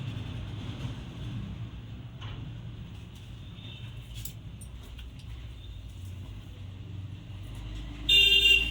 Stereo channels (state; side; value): identical; both; correlation 1.00